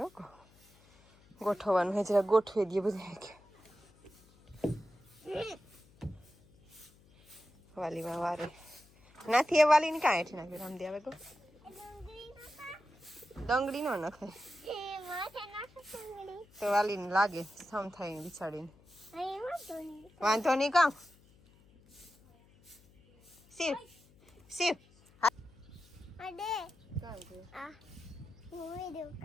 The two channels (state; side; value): noise; left; hum, 28 dB below the sound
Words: ગોઠવવાનું હે જરા ગોઠવી દઈએ બધું કે વાલીમાં વારે નાથી એ વાલી ને કાંઈ હેઠી નાખ્યું રામદી આવે તો ડંગળી નો નખે તો વાલી ને લાગે સમ થાય બિચાડીને વાંધો નહીં કામ શિવ શિવ